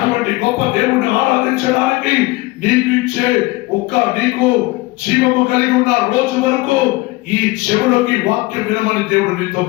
గొప్ప దేవుడిని ఆరాధించడానికి నీకు జీవము కలిగి ఉన్న రోజు వరకు ఈ చెవులోకి వాక్యం వినమని దేవుడు నీతో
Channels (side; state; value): right; quieter; 21.2 dB